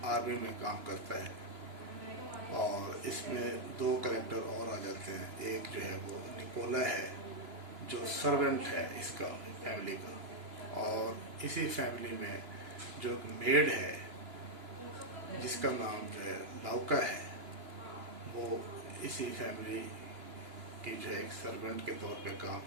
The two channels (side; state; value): left; late; 2.9 ms